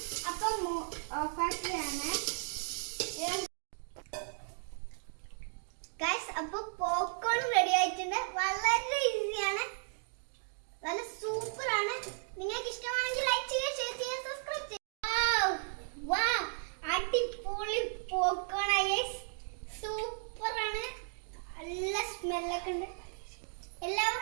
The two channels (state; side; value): silent; left; 54 dB below the other